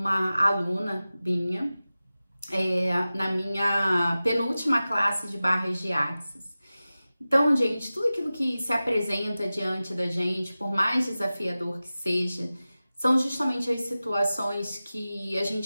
aluna minha, na minha penúltima classe de barras de axis. Então, gente, tudo aquilo que se apresenta diante da gente, por mais desafiador que seja, são justamente as situações que a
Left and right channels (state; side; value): inverted; both; correlation -0.96